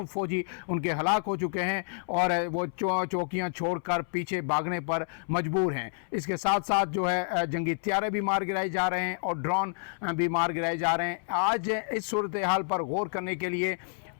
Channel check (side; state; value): right; silent; 59 dB below the other